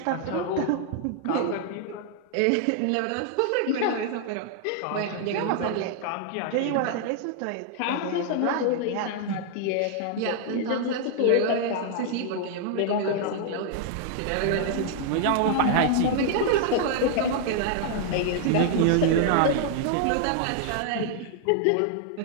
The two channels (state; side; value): different; both; correlation 0.00